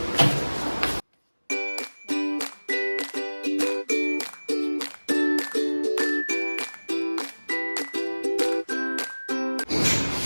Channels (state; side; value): inverted; both; correlation -1.00